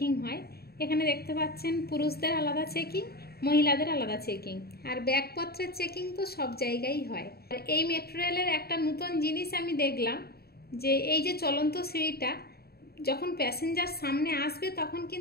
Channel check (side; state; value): right; late; 0.45 ms